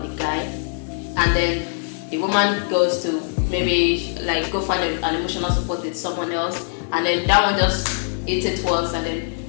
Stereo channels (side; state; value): right; silent; digital silence